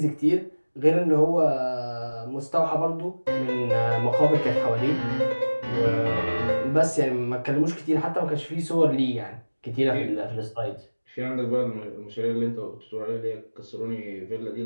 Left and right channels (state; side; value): inverted; both; correlation -1.00